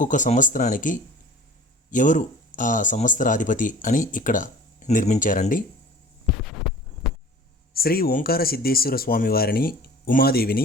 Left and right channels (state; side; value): normal; both; correlation 0.44